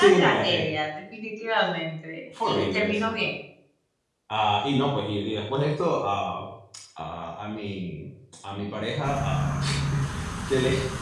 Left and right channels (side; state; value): both; identical; correlation 1.00